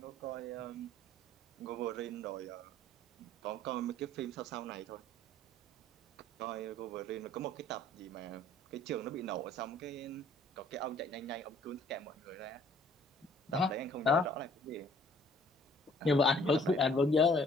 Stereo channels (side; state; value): both; normal; correlation 0.57